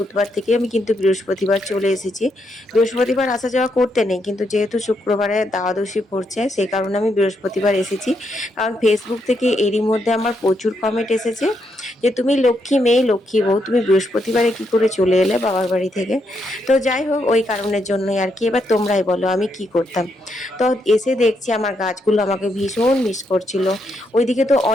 থেকে আমি কিন্তু বৃহস্পতিবার চলে এসেছি। বৃহস্পতিবার আসা যাওয়া করতে নেই, কিন্তু যেহেতু শুক্রবারে দ্বাদশী পড়ছে সেই কারণে আমি বৃহস্পতিবার এসেছি। কারণ ফেসবুক থেকে এরই মধ্যে আমার প্রচুর কমেন্ট এসেছে যে তুমি লক্ষ্মী মেয়ে, লক্ষ্মী বউ, তুমি বৃহস্পতিবারে কি করে চলে এলে বাবার বাড়ি থেকে। তো যাই হোক, ওই কারণের জন্যই আর কি। এবার তোমরাই বলো আমি কি করতাম। তো এসে দেখছি আমার গাছগুলো আমাকে ভীষণ মিস করছিল। ওইদিকে তো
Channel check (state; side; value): normal; both; correlation 0.79